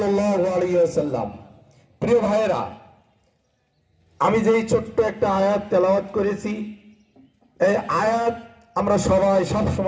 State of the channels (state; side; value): identical; both; correlation 1.00